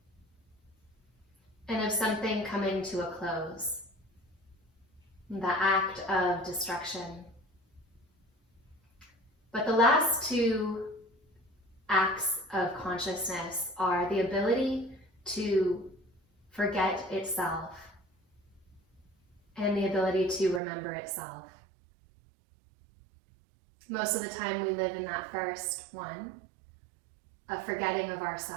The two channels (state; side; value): drops out; left; at 20.6 s